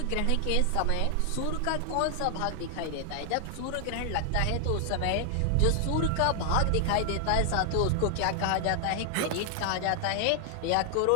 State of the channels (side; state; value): both; different; correlation 0.00